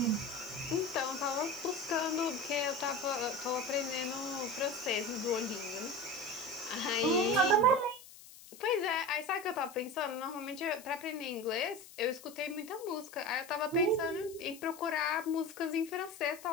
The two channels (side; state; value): left; noise; hiss, 19 dB below the sound